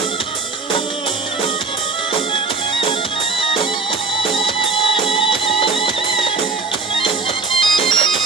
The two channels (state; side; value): quieter; left; 4.2 dB